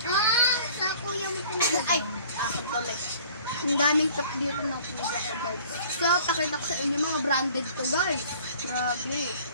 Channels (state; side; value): inverted; both; correlation -0.50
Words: Sa kuya mo talaga. Ay, ako tuloy. Ang daming cup dito ng kuya ko guys. So, pakita ko sa inyo mga branded to guys. Grabe.